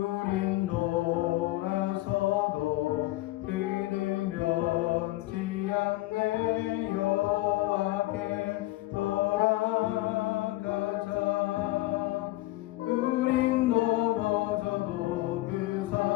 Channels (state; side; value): quieter; right; 18.1 dB